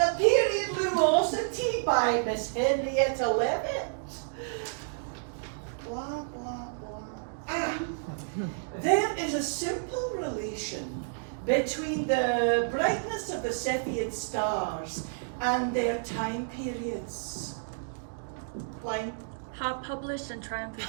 Period Lumosity by Miss Henrietta Levitt. Blah, blah, blah. Ah, there is a simple relation between the brightness of the Cepheid stars and their time periods. Line. Hot published and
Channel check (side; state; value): left; silent; digital silence